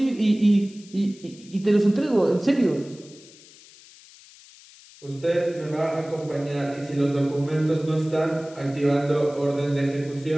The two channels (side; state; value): left; noise; hiss, 23 dB below the sound